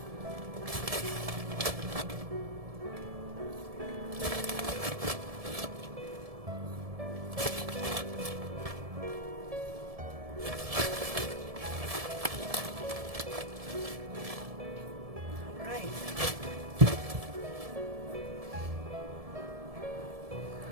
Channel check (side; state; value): left; late; 1.7 ms